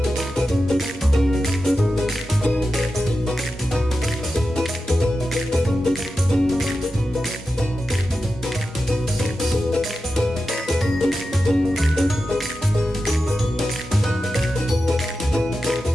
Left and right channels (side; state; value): both; normal; correlation 0.91